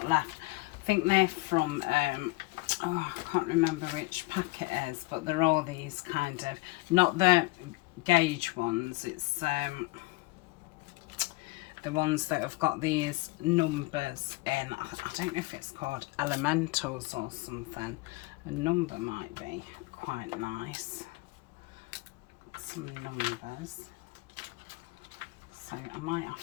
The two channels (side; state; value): right; quieter; 24.0 dB